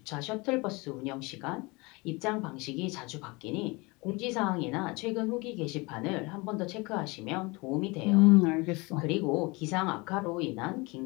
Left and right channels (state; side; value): quieter; right; 25.8 dB